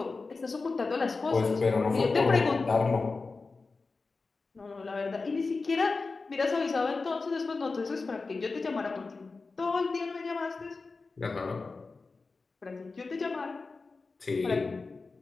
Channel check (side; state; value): right; quieter; 4.0 dB